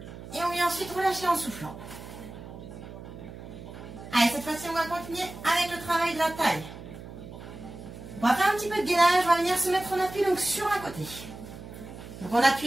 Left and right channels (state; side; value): noise; right; hum, 13 dB below the sound